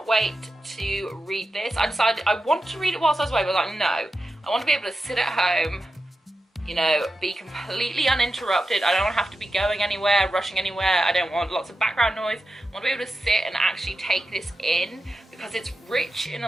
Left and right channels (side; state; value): both; normal; correlation 0.91